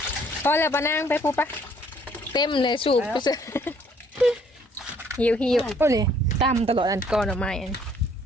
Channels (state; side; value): normal; both; correlation 0.63